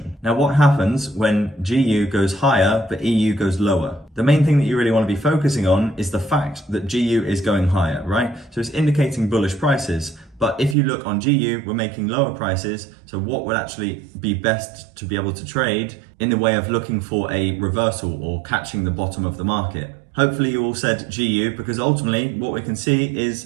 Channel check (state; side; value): drops out; left; at 10.8 s